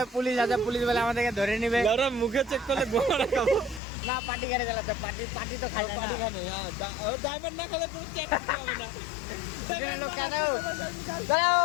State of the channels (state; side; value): drops out; right; at 3.8 s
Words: পুলিশ আছে, পুলিশ বলে আমাদেরকে ধরে নিবে। মুখে চেক করলে গোড়া খাবো না, পার্টি গাড়ি চালাতে পার্টি তো খাই পার্টি খানে। ডায়মন্ড না খেলে পুরো চেক করতে হবে না।